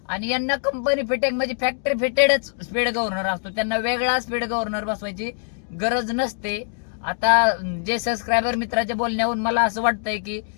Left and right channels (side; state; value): right; silent; digital silence